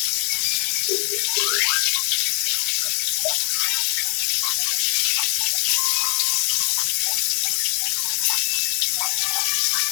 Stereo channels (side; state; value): right; quieter; 39.8 dB